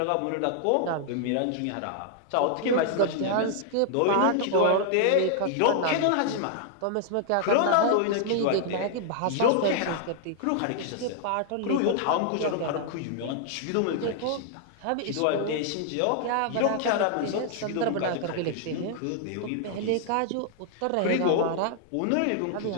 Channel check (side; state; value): both; different; correlation 0.00